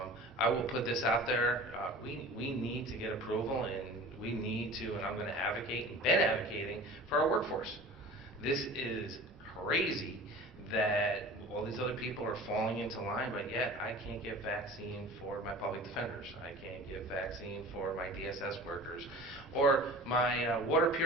I will put this out there. We need to get approval, and we need to, and I'm going to advocate and been advocating for our workforce. This is crazy that all these other people are falling into line, but yet I can't get vaccine for my public defenders. I can't get vaccine for my DSS workers, or my water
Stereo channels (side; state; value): both; normal; correlation 0.40